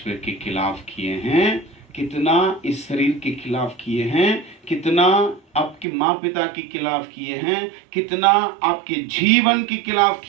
के खिलाफ किए हैं, कितना इस शरीर के खिलाफ किए हैं, कितना आपके माँ पिता के खिलाफ किए हैं, कितना आपके जीवन के खिलाफ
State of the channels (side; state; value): left; drops out; at 5.9 s